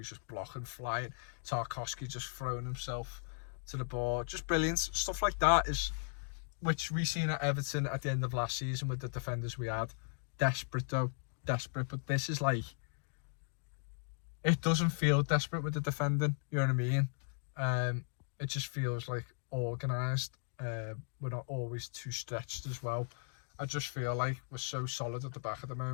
just blocking, flying. Tarkowski just throwing himself to the ball. Just brilliant. Stuff like that is, which we seen at Everton at the end of last season with the defenders we had. Desperate though. Desperate. But this is like, it doesn't feel desperate with the defending. You know what I mean? It just feels like organised. We're not always too stretched as well. I just feel like we're so solid at the back at the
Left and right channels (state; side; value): silent; right; 53 dB below the other